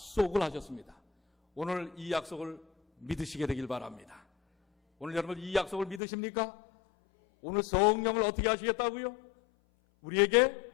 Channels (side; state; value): right; drops out; at 6.0 s